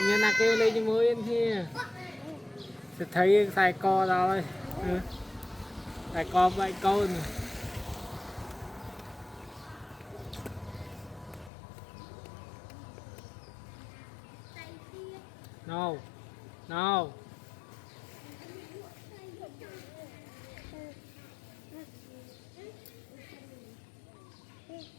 nhân là kêu lên cho mới yên kia sẽ thấy xài co rồi xài co vậy câu này no no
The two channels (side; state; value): right; drops out; at 11.5 s